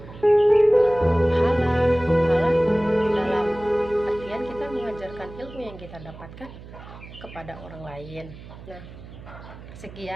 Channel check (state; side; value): noise; right; hum, 16 dB below the sound